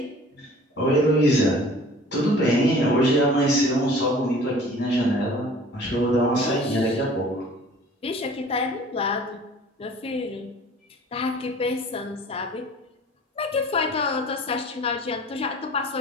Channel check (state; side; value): normal; both; correlation 0.47